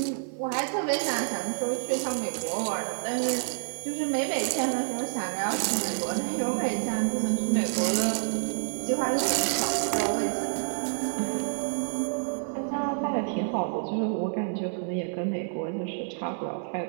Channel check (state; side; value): silent; left; 59 dB below the other